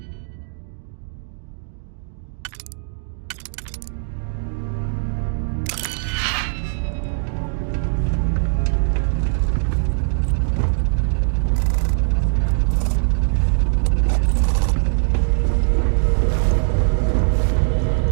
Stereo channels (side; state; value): left; silent; digital silence